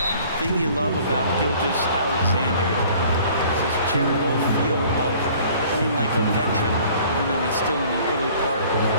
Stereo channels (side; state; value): both; inverted; correlation -0.53